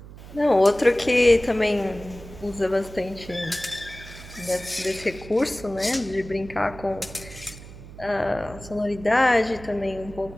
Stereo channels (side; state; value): right; noise; hum, 16 dB below the sound